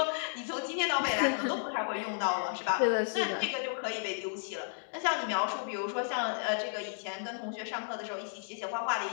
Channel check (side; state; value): right; silent; digital silence